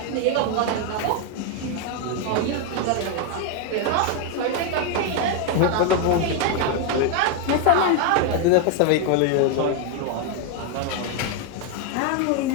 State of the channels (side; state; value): both; different; correlation 0.01